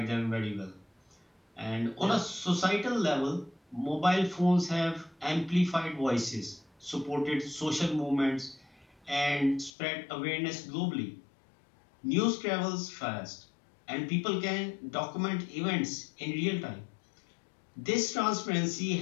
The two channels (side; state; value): right; drops out; at 9.7 s